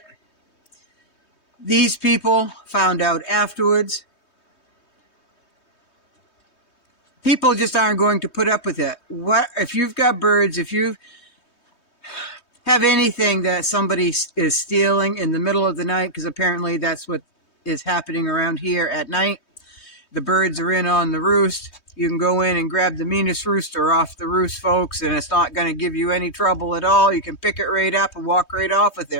These people found out afterwards. People just aren't going to put up with it. What if you've got birds, if you have anything that somebody is stealing in the middle of the night, because apparently that's what is happening around here at night. The birds are in on the roost. You can go in and grab the meanest rooster off the roost, folks, and it's not going to give you any trouble at all. You can pick it right up and walk right off with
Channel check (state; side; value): late; right; 3.2 ms